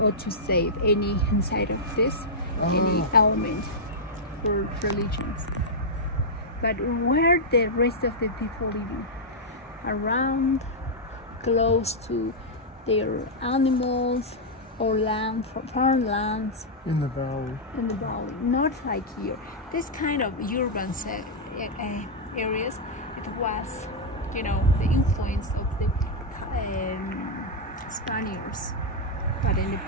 or to save any inside of this, any element for religions. But where the rest of the people living? Around, close to their animals or land, farmlands. In the valley. In the valley, not like here. This kind of urban areas, it was, the influence of the Spaniards. But in the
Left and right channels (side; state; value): both; normal; correlation -0.07